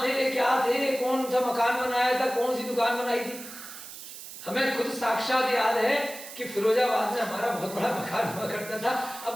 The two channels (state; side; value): noise; right; hiss, 13 dB below the sound